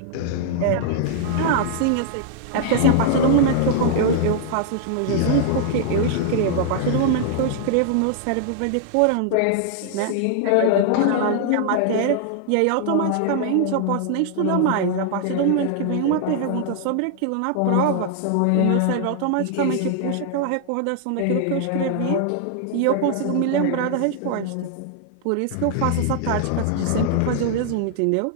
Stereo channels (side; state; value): both; different; correlation -0.01